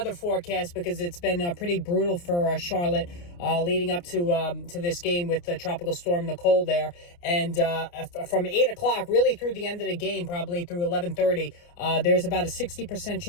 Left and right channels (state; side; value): late; right; 29 ms